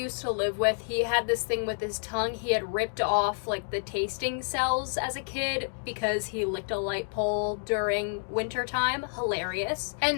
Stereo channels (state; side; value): silent; right; digital silence